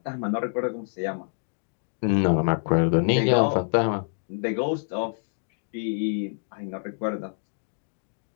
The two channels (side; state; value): right; silent; digital silence